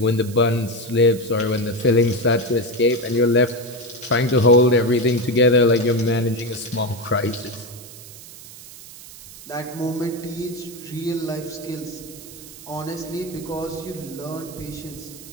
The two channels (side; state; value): right; noise; hiss, 17 dB below the sound